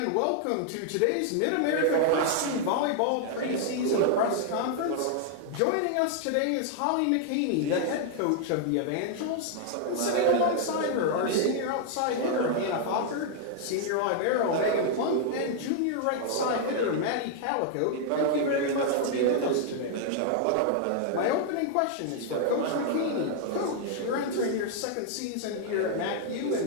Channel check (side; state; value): both; different; correlation 0.00